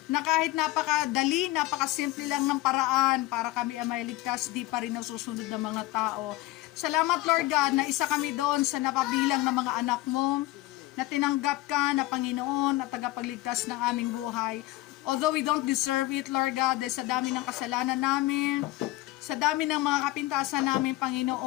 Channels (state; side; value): quieter; right; 17.9 dB